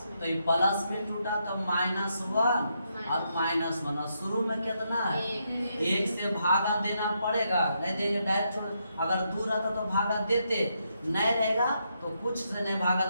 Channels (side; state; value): both; inverted; correlation -0.80